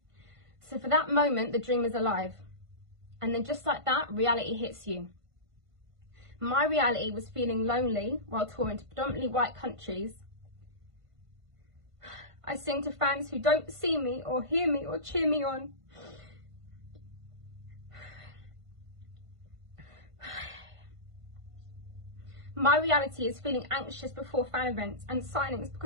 So for that moment, the dream is alive. And then just like that, reality hits you. My reality was feeling lonely while touring to predominantly white countries. I sing to fans who don't see me or hear me or cheer me on. My reality is feeling anxious before fan events and signings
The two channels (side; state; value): left; late; 1.5 ms